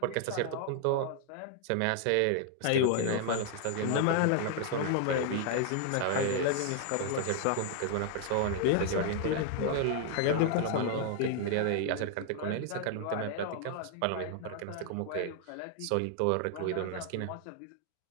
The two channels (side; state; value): both; different; correlation 0.00